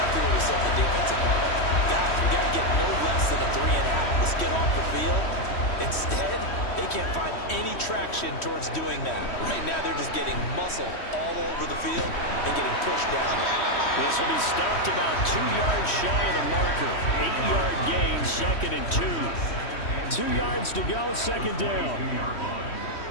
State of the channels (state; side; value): late; right; 3.1 ms